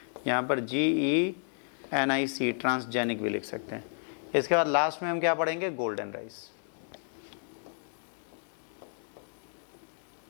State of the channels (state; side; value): silent; right; 56 dB below the other